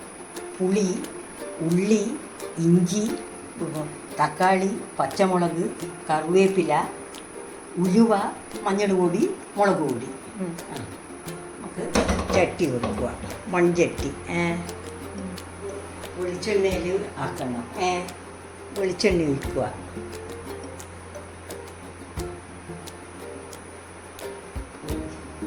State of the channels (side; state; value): both; identical; correlation 1.00